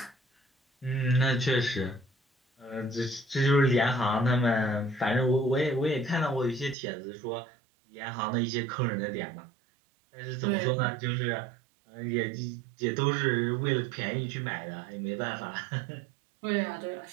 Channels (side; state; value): left; drops out; at 6.8 s